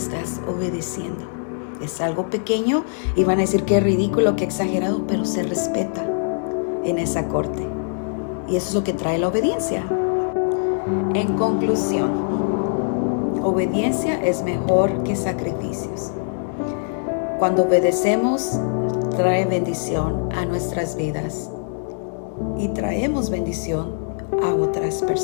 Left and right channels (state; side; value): silent; right; digital silence